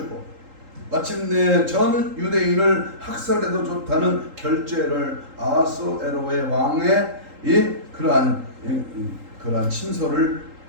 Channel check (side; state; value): left; late; 3.8 ms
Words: 마침내 전 유대인을 학살해도 좋다는 결재를 아하스에로의 왕의 그러한 친서를